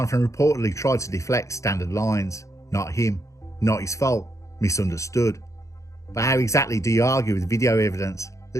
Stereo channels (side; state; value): right; late; 0.15 ms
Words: reportedly tried to deflect standard lines. Not him, not his fault, misunderstood. But how exactly do you argue with video evidence